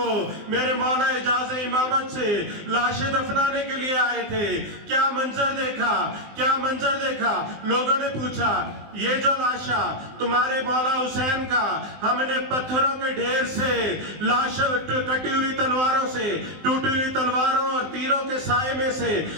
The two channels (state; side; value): late; left; 19 ms